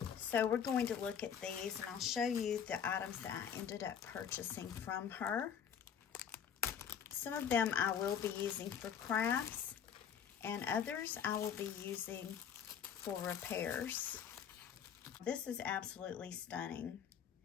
So we're going to look at these and I'll show you the items that I ended up purchasing from her. Some of them I will be using for crafts and others I will be using for repairs. This is absolutely stunning.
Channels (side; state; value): right; quieter; 8.1 dB